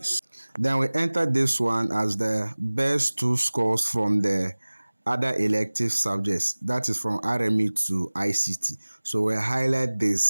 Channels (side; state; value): both; inverted; correlation -1.00